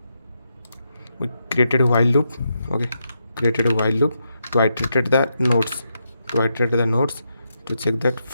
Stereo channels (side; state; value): both; inverted; correlation -0.82